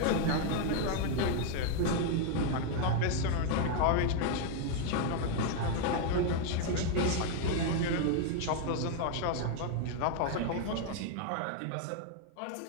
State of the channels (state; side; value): different; both; correlation 0.00